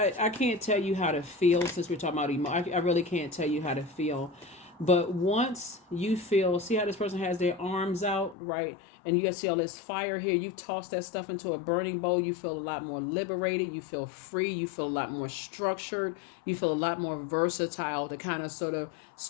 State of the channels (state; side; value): drops out; right; at 8.3 s